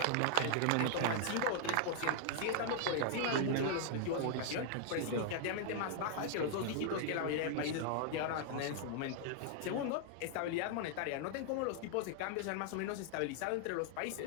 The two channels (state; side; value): different; both; correlation -0.01